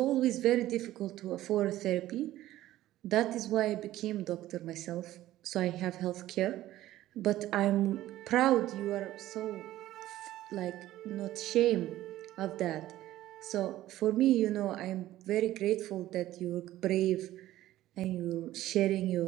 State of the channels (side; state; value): left; quieter; 14.7 dB